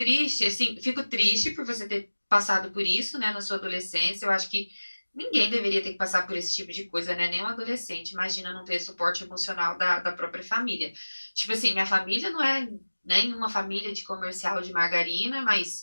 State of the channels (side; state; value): both; inverted; correlation -1.00